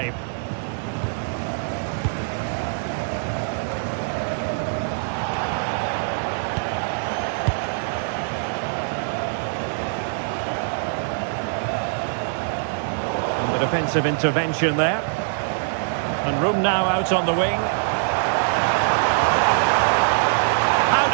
Defensive intervention there. And room now out on the wing. How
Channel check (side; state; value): left; silent; digital silence